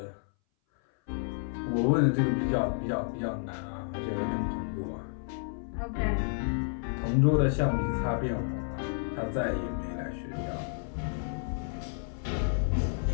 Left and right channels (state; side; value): silent; right; 57 dB below the other